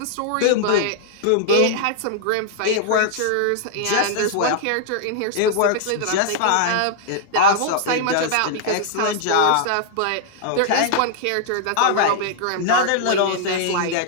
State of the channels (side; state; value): both; different; correlation -0.01